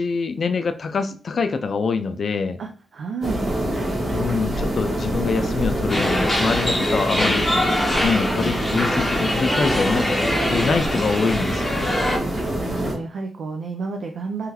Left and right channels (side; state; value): both; normal; correlation 0.87